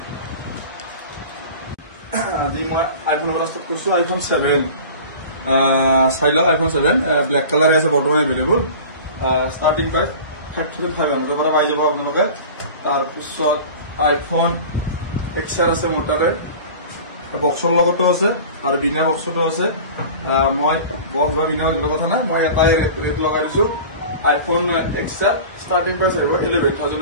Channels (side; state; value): both; inverted; correlation -0.38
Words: আজি মই আইফোন পৰা ষ্টাৰ্ট কৰিছো। আইফোন 7 চাই লওক। আইফোন 7 ব্লেক কালাৰ আছে বৰ্তমান এভেইলেবল। ষ্টাৰ্টিং প্ৰাইচ 35,500 পৰা পাই যাব আপোনালোকে। তাৰপিছত আইফোন XR আছে মোটাৰে, বক্সৰ লগতো আছে আৰু বিনা বক্সতো আছে। মই বক্স বা বিনা কথা নাই, মই এটাই ৰেট লগাই দিছো। আইফোন XR ষ্টাৰ্টিং প্ৰাইচ আহিব 11,000